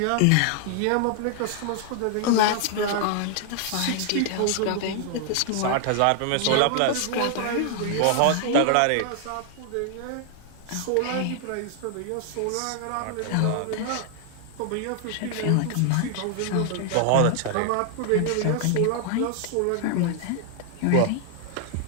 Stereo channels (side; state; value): both; different; correlation 0.00